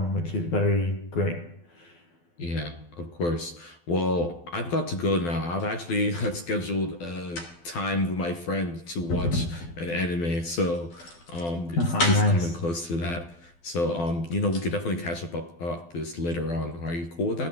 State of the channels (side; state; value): right; late; 12 ms